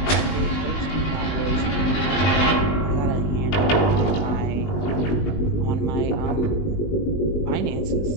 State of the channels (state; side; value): late; right; 20 ms